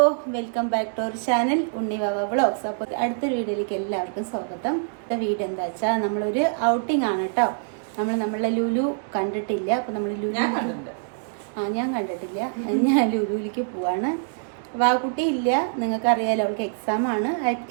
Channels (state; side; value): silent; left; digital silence